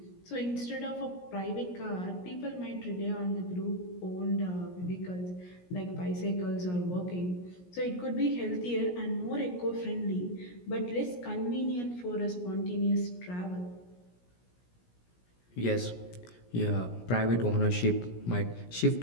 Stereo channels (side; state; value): right; late; 17 ms